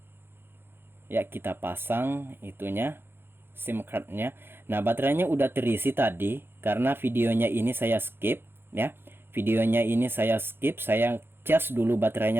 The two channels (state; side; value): late; left; 0.11 ms